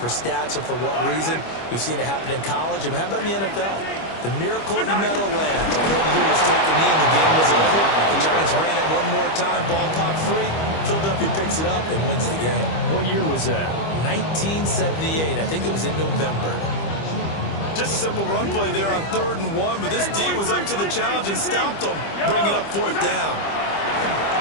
stats or for what reason. We've seen it happen in college. And how about in the NFL? The miracle of the Meadowlands. All they had to do was take a knee and the game was over. The Giants ran it one more time. Ball popped free. Philadelphia picks it up and wins the game. What year was that? 1978. I think it was in November. Just a simple run play there on 3rd and 1, but this D was up to the challenge and stopped them, bringing up 4th down.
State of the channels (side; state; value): right; late; 25 ms